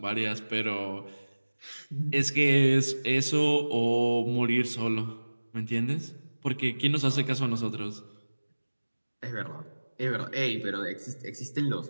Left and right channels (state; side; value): inverted; both; correlation -1.00